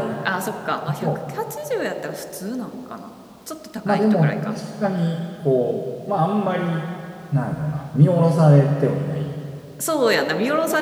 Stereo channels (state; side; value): identical; both; correlation 1.00